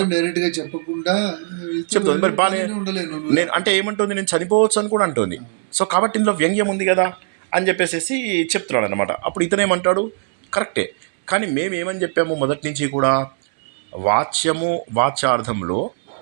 డైరెక్ట్ గా చెప్పకుండా చెప్తుంది, మరి బాగా నేను అంటే ఏమంటుంది, నేను చనిపోవచ్చు అని కూడా అంటుంది. సో కాబట్టి ఇందులో వ్యంగ్యం ఉంది కదా అని చెప్పేసి చెప్తున్నాడు అనమాట. అప్పుడు ఇతనేమంటాడు, కరెక్టే, కానీ మేమేమని చెప్పాము మొదటి నుంచి కూడా, వాచ్యార్థంలో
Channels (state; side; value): silent; left; 65 dB below the other